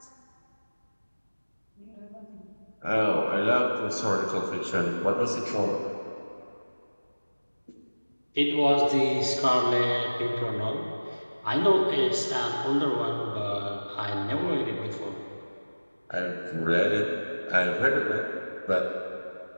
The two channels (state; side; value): inverted; both; correlation -1.00